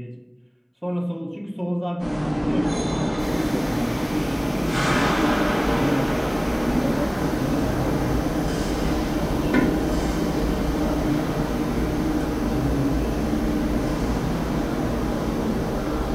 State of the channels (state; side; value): identical; both; correlation 1.00